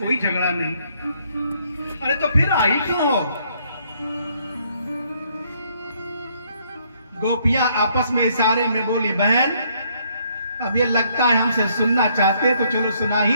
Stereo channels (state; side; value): inverted; both; correlation -0.68